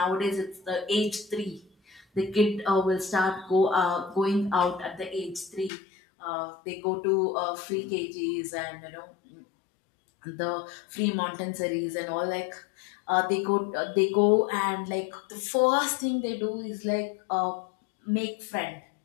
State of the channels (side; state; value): right; drops out; at 5.7 s